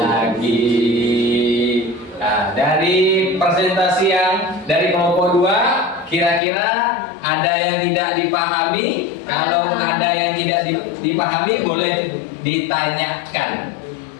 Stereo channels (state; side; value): drops out; right; at 6.4 s